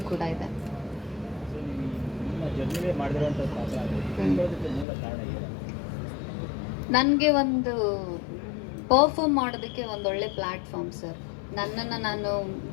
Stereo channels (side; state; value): right; drops out; at 4.9 s